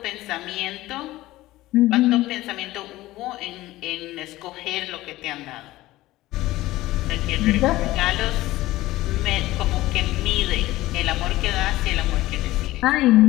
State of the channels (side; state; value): right; quieter; 17.1 dB